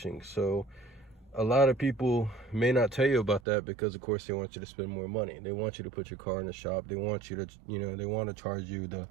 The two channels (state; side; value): drops out; left; at 3.4 s